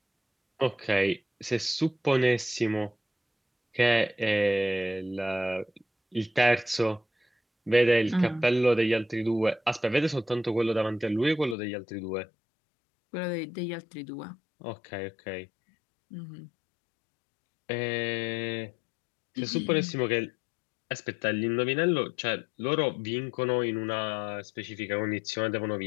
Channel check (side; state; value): right; drops out; at 11.6 s